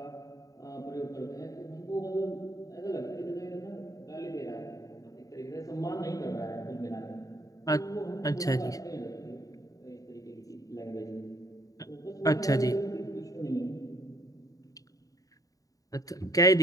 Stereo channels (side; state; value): right; late; 0.17 ms